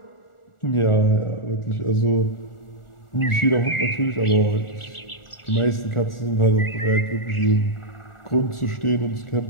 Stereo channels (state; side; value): late; right; 1.4 ms